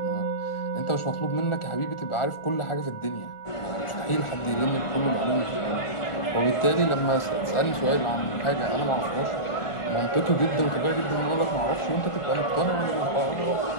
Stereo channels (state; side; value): late; right; 1.4 ms